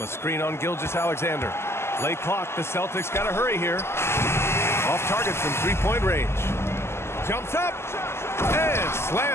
a screen on Gilgeous-Alexander. Late clock. The Celtics got to hurry here. Off target from three-point range. Jumps up. And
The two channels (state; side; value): late; right; 0.12 ms